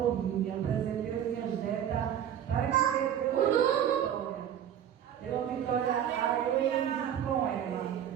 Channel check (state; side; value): quieter; left; 9.9 dB